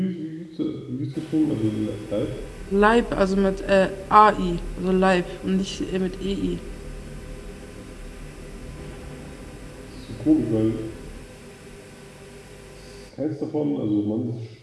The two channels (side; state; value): both; identical; correlation 1.00